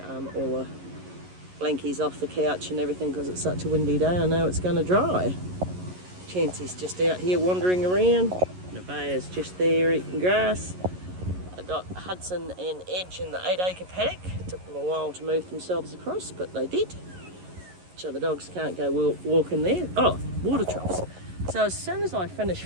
all the blankies off the couch and everything, because it's such a windy day. I know it's going to dry. Chancy's just out here wandering around. Nevaeh's just there eating grass. I got Hudson and Edge in the 8-acre paddock. It took them a while to move themselves across, but they did. So the dogs can't go walking there. Oh, water troughs. So as soon as I finish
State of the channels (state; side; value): late; left; 11 ms